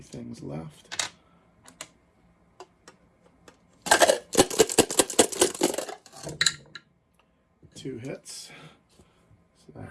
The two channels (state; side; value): identical; both; correlation 1.00